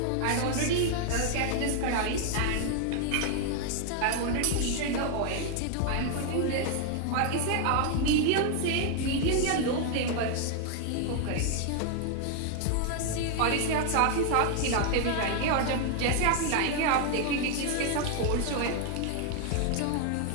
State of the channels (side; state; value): both; different; correlation 0.00